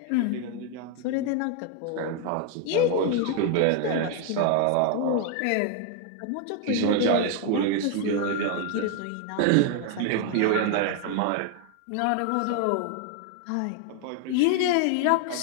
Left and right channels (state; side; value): different; both; correlation 0.00